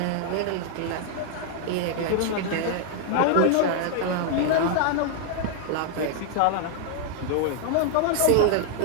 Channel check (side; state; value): both; different; correlation 0.00